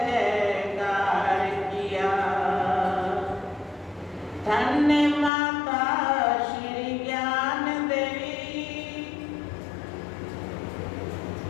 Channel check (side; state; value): right; drops out; at 5.3 s